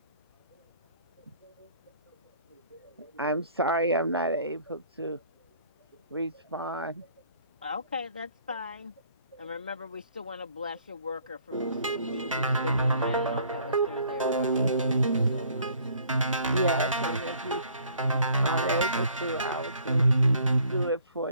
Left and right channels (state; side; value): inverted; both; correlation -0.58